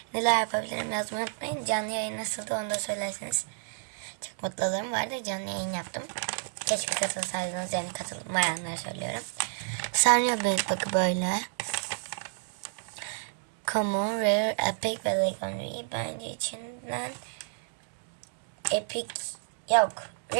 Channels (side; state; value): left; silent; digital silence